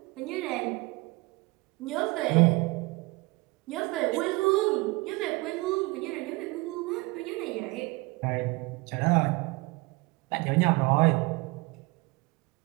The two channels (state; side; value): quieter; left; 24.3 dB